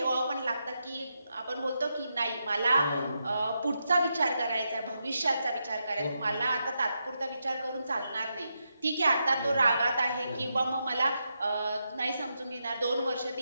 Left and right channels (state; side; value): inverted; both; correlation -0.84